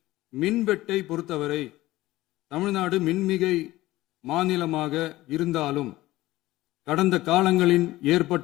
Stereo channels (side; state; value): right; quieter; 17.2 dB